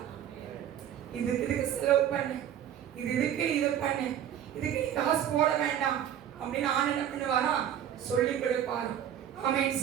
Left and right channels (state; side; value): quieter; left; 10.1 dB